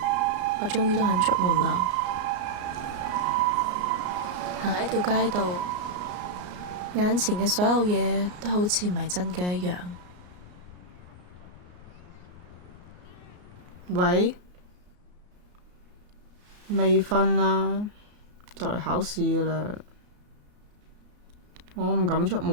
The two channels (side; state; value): left; late; 33 ms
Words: 我終於都肯出門啦。行喺條街度，眼前嘅所有嘢都好似唔係真嘅一樣。喂，未瞓啊？就嚟考試㗎啦。我唔敢出